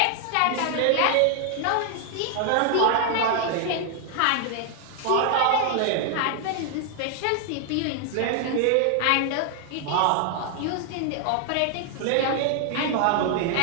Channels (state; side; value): different; both; correlation 0.00